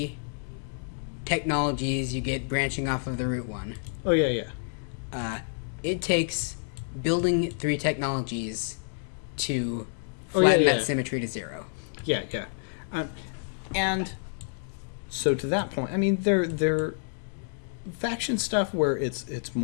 technologies you get branching off of the root one. Oh, yeah. It takes building 3 technologies to Oh, yeah, flatten yeah. that symmetry to 0. Yeah. And so to that point, I mean, they're faction stuff where it's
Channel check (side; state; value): right; silent; digital silence